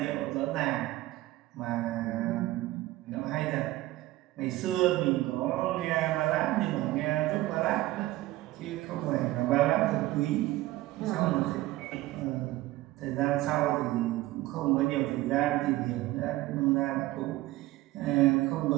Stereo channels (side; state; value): left; quieter; 17.5 dB